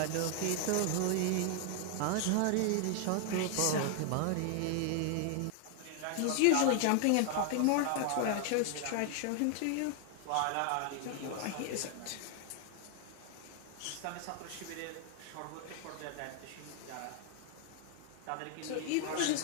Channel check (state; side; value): different; both; correlation 0.00